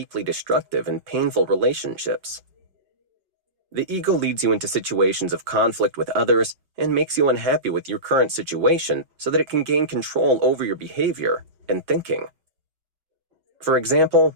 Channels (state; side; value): late; left; 5.4 ms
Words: destructive and painful relationships. The ego leads you into situations of conflict with others and makes you unhappy with your current situation so that it can gain control over your behavior and thinking. For example,